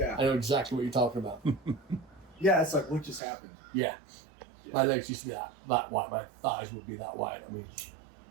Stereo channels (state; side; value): drops out; left; at 3.2 s